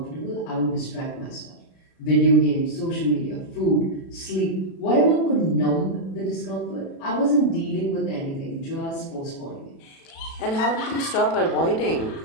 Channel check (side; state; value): right; late; 36 ms